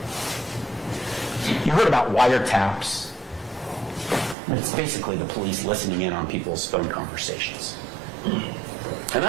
You heard about wiretaps. It's basically the police listening in on people's phone conversations. And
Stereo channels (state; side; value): drops out; left; at 4.4 s